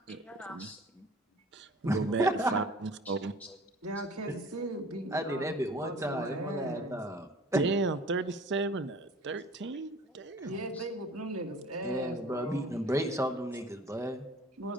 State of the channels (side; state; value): both; normal; correlation 0.47